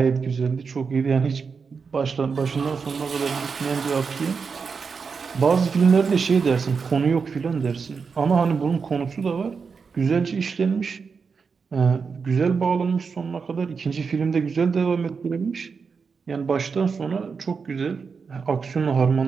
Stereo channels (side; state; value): left; quieter; 5.4 dB